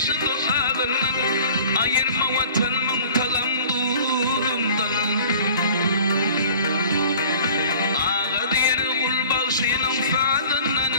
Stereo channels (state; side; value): inverted; both; correlation -0.47